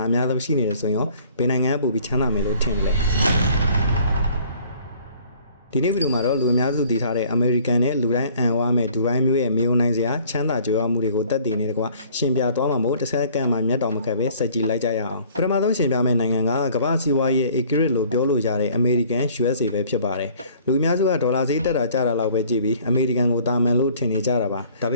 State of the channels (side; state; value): both; inverted; correlation -0.55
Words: အများဆုံးရှိနေတယ်ဆိုရင်ရောဘယ်နိုင်ငံကပိုပြီးချမ်းသာမယ်လို့ထင်လဲဒီနေ့ဗီဒီယိုမှာတော့လူအများစုသိထားတဲ့အမေရိကန်နဲ့လူတိုင်းအံ့ဝါမဲ့ဒူဘိုင်းမျိုးရဲ့မြေုံနိုင်စရာချမ်းသာကြွယ်ဝမှုတွေကိုတက်တည်နေတယ်ကွာရှင်ပြသွားမှာမို့တစ်ဆက်ကန်မှာမျက်တော်မခက်ပဲစက်ကြည့်လိုက်ကြရအောင်ပထမဆုံးရှင်ပြမယ့်နိုင်ငံကကမ္ဘာစီးပွားရေး accurate လို့ပြောလို့ရတဲ့အမေရိကန် USA ပဲဖြစ်ပါတယ်လူအများစုကဒေါ်လာဈေးတက်တာကျတာလောက်ပဲကြည့်ပြီးအမေရိကန်ကိုတာမန်လို့ထင်နေကြတာပါဒါပ